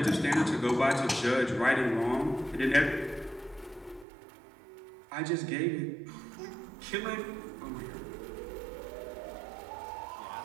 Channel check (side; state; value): left; drops out; at 4.0 s